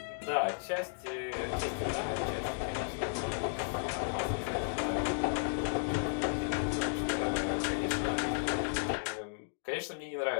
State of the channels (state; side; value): silent; right; digital silence